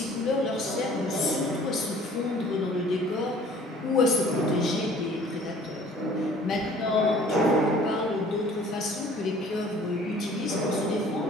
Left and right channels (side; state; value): both; normal; correlation 0.51